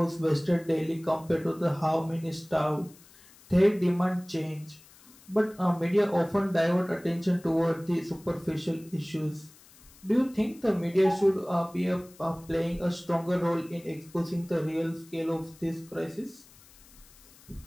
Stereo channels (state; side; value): noise; left; hiss, 25 dB below the sound